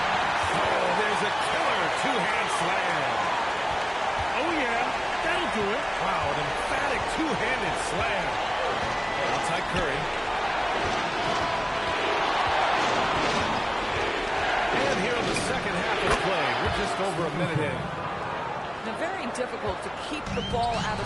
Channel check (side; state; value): both; identical; correlation 1.00